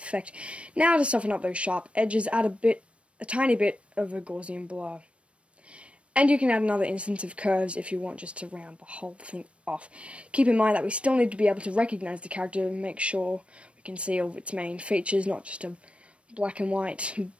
Now to soften up those sharp edges, add a tiny bit of a Gaussian blur. And you can add another instance of curves if you want, just to round the whole thing off. Keep in mind that we still need to be able to recognize the character and make sure we can see all of its main features, not just a black and white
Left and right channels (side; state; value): left; late; 0.061 ms